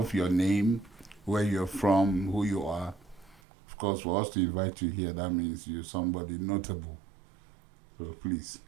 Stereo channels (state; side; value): drops out; left; at 3.4 s